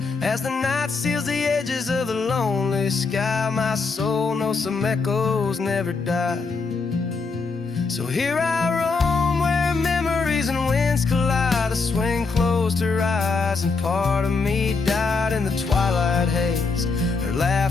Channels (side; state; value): right; quieter; 4.4 dB